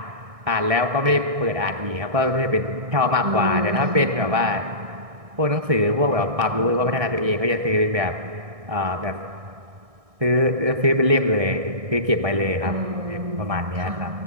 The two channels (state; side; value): late; left; 1.6 ms